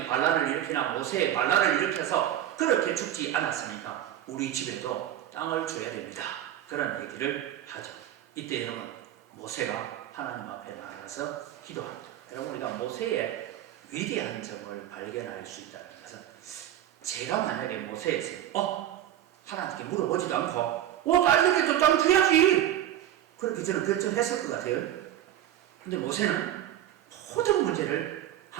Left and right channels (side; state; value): left; quieter; 12.0 dB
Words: 반란을 일으키나 모세의 반란을 일으켜서 그렇게 죽지 않았으니까 우리 집에도 땅을 줘야 됩니다. 그런 얘기를 하죠. 이때 여러분 모세가 하나님 앞에 나가서 기도합니다. 여러분 우리가 모세의 위대한 점을 발견할 수 있다는 것은 제가 만약에 모세에서 하나님께 물어보지도 않고 딸에게도 땅 줘야지 그렇게 저는 결정했을 것 같아요. 근데 모세는 모든 문제를